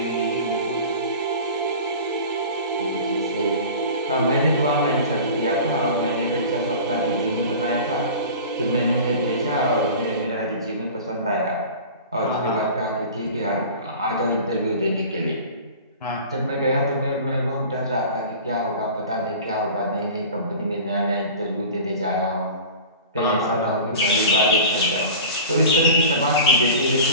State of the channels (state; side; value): inverted; both; correlation -0.38